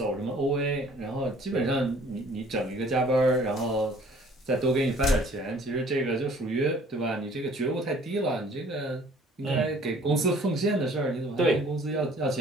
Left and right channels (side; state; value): both; normal; correlation 0.54